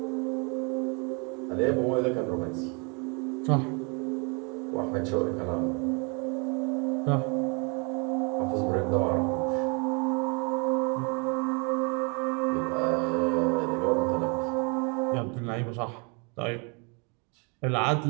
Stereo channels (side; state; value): left; quieter; 33.4 dB